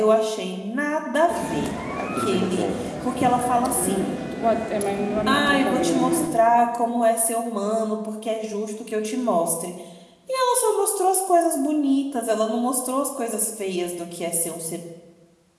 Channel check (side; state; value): both; identical; correlation 1.00